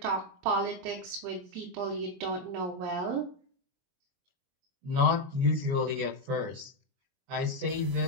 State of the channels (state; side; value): late; left; 22 ms